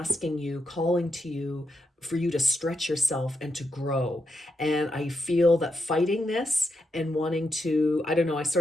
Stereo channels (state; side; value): normal; both; correlation 0.84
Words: you, calling to you for you to stretch yourself and to grow. And I feel that fighting this and wanting to, I don't know, I